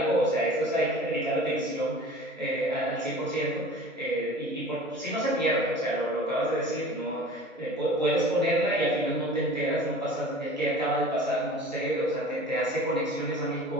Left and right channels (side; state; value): both; normal; correlation 0.42